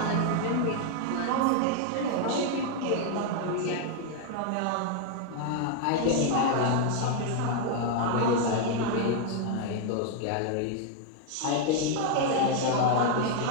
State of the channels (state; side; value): different; both; correlation 0.00